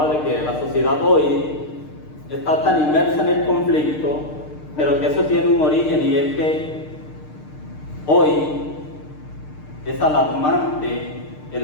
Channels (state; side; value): late; right; 6.6 ms